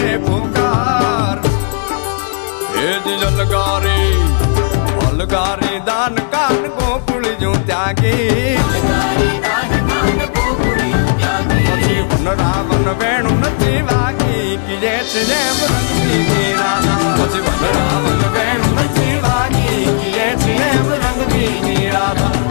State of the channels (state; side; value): silent; right; digital silence